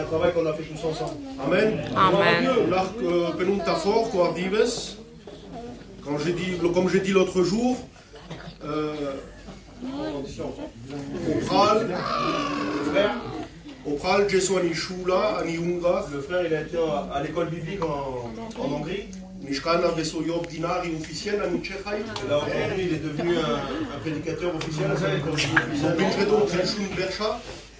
travail qu'on a fait tous ensemble. Amen. Amen. Comme j'ai dit l'autre jour, au Pral, le frère il a été à l'école biblique en Hongrie. Et là aujourd'hui il est devenu un prédicateur officiel.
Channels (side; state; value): both; identical; correlation 1.00